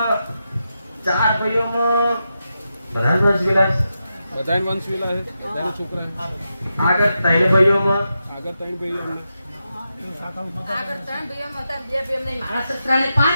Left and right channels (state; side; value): inverted; both; correlation -0.88